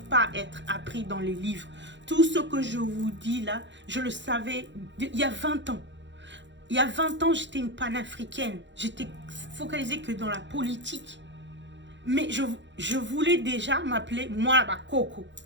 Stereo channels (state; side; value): late; left; 0.53 ms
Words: pas être appris dans les livres. Tout ce que je vous dis là, je le savais il y a 20 ans. Il y a 20 ans, j'étais une panafricaine. J'étais focalisée que dans la politique. Mais je voulais déjà m'appeler moi Coco.